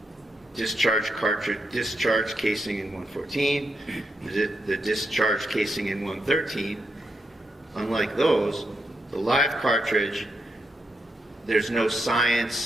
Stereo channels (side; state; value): both; normal; correlation 0.82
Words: discharge casing in 114, the discharge casing in 113, unlike those, the live cartridge, there's no